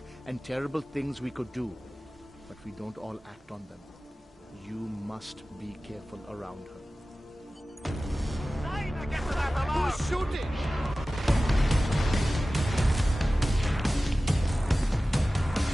and terrible things we could do. But we don't all act on them. You must be careful around her. Who's shooting?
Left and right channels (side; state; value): both; normal; correlation 0.96